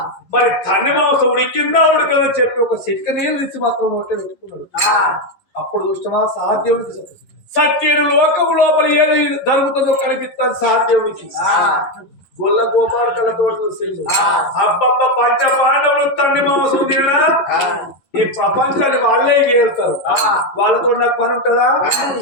మరి తన్ని మాంసం ఉడికిందా ఉడకంగా చెప్పి ఒక సిట్క నీళ్ళు తీసి మాత్రం నోటే పెట్టుకున్నాడు. అప్పుడు చూసినా సాధ్యవుడికి సత్యుడు లోకం లోపల ఏది జరుగుతుందో కనిపిస్తుంది సాధ్యవుడికి. గొల్ల గోపాలకలతో చూసిండు. అబ్బబ్బ పంచ పాండవులు తన్ని మాంసం తినా ఈ ప్రపంచాన్ని వాళ్ళే గేలుతారు, వాళ్ళతో నాకు పని ఉంటుందా?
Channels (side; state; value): right; late; 11 ms